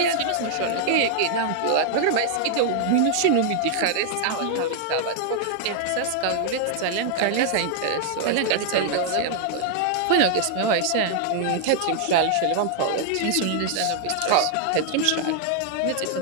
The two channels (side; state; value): both; different; correlation 0.00